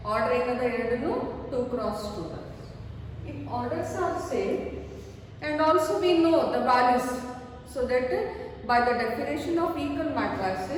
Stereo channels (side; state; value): both; identical; correlation 1.00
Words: Order ಏನದ ಎರಡನ್ನು 2 cross 2. If orders are same, and also we know the values, so that by the definition of equal